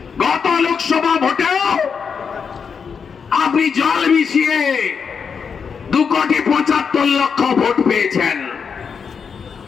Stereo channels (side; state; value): right; quieter; 6.2 dB